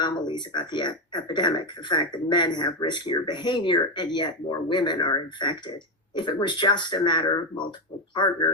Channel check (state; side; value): normal; both; correlation 0.11